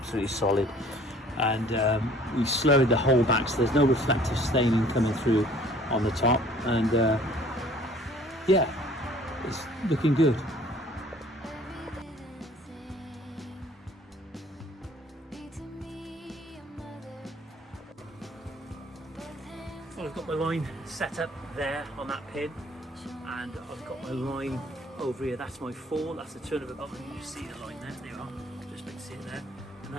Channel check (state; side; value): normal; both; correlation 0.54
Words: solid, and we slurried the whole back, so there's no reflective staining coming through on the top, and yeah, it's looking good. Well, I've got my line set up there on that pin, and I've got my line over here. That's my fall. That's the turn of a bubble. You see the line there. There you are. Just make it see it there. And